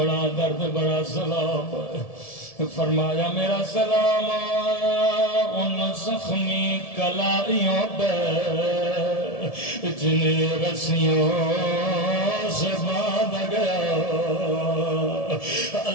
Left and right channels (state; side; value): late; right; 1.7 ms